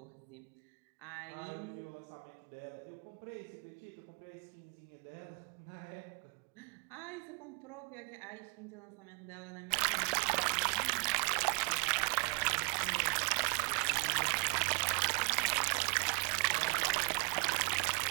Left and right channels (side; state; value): left; quieter; 35.8 dB